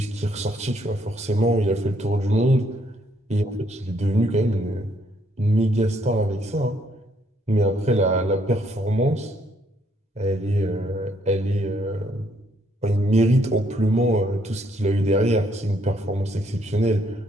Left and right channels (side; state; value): both; normal; correlation 0.70